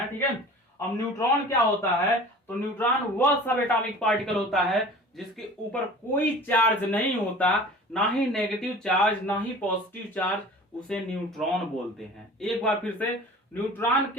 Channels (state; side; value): normal; both; correlation 0.41